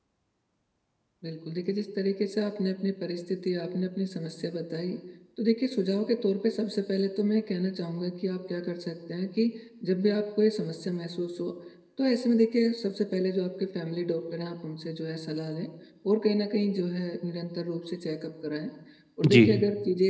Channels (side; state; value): both; identical; correlation 1.00